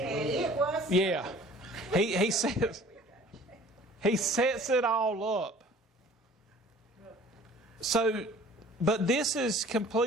it was. Yeah. He sets it all up. So, but this is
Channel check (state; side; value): normal; both; correlation 0.50